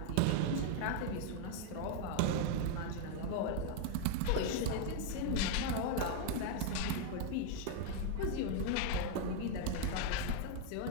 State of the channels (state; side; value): different; both; correlation 0.00